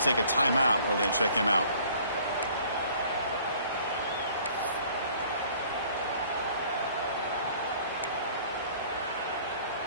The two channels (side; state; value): both; inverted; correlation -0.54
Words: a timeout while they check him out.